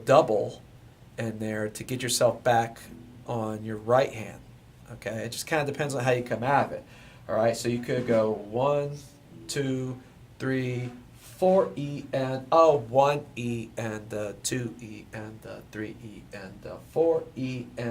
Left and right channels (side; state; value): both; identical; correlation 1.00